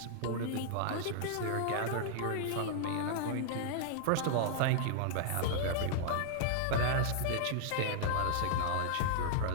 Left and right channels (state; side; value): different; both; correlation -0.01